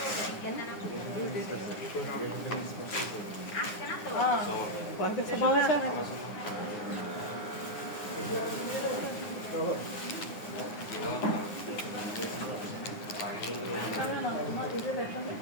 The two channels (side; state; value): right; late; 9.7 ms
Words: পয়সা ভালো আছে?